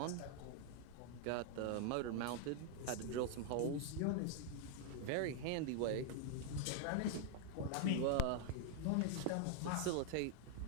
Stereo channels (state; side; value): different; both; correlation 0.00